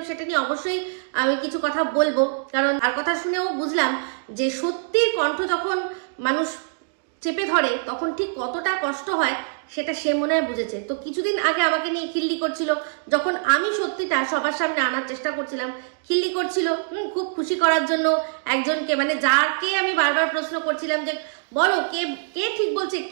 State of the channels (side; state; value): left; silent; digital silence